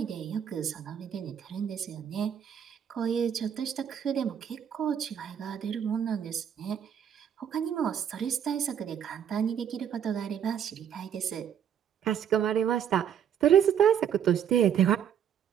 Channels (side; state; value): left; quieter; 8.8 dB